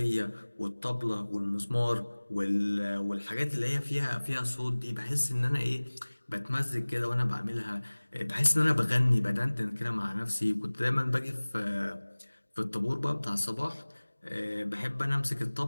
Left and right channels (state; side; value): inverted; both; correlation -1.00